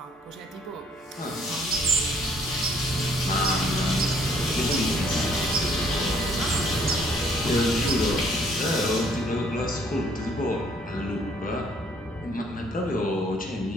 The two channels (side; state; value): both; normal; correlation 0.62